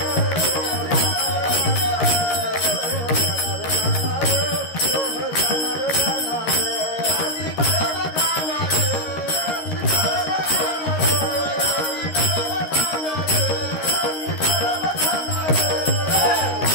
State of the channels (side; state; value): right; late; 13 ms